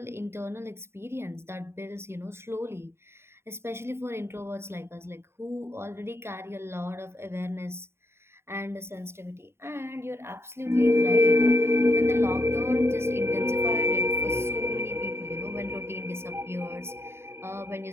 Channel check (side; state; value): left; late; 0.12 ms